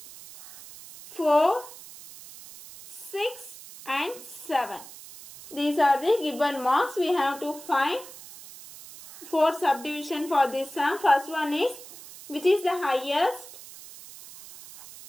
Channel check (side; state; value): right; noise; hiss, 16 dB below the sound